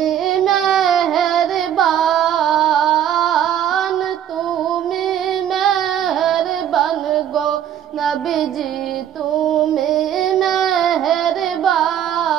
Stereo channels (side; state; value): left; quieter; 10.1 dB